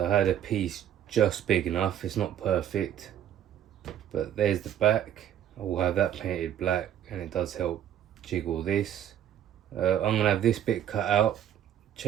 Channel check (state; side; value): quieter; left; 10.4 dB